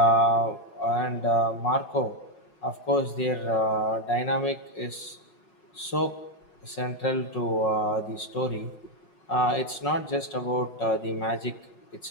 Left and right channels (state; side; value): late; right; 5.5 ms